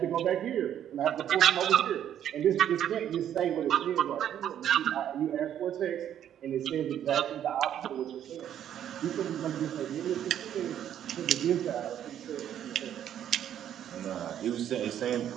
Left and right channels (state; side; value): quieter; left; 10.3 dB